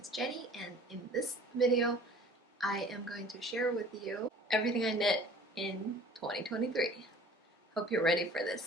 Jenny, and in this video I am going to share with you everything I knit in 2023. Hope you're ready for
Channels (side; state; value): both; normal; correlation 0.48